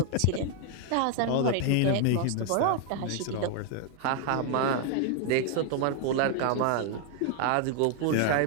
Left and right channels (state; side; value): different; both; correlation 0.00